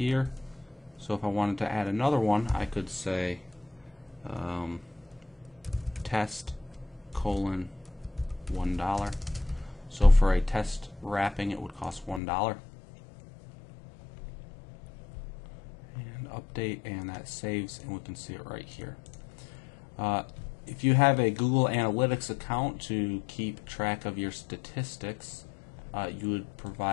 So if I wanted to add another one, I could say test $1. So for a test wrapping, it would cost $1. And update, and that saves, and we can see it right here. If you have a Google Analytics account to keep track of your statistics, you would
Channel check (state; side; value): drops out; right; at 12.2 s